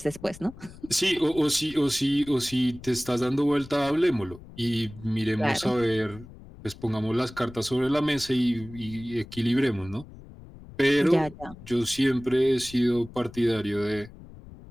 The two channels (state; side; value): noise; left; rumble, 18 dB below the sound